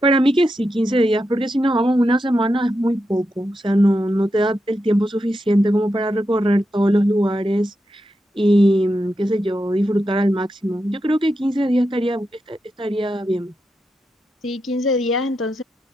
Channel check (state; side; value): normal; both; correlation 0.87